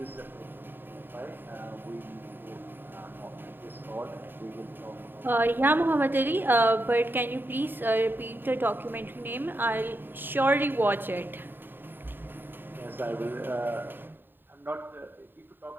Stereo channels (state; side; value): late; left; 0.095 ms